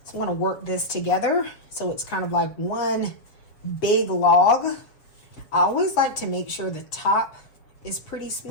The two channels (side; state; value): right; late; 7.3 ms